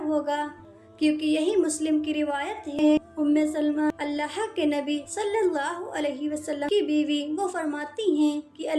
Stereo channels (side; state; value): both; identical; correlation 1.00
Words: ہوگا، کیونکہ یہی مسلم کی روایت ہے۔ ام سلمہ اللہ کے نبی صلی اللہ علیہ وسلم کی بیوی، وہ فرماتی ہیں کہ